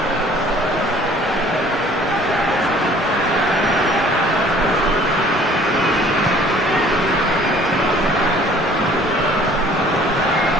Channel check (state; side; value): normal; both; correlation 0.53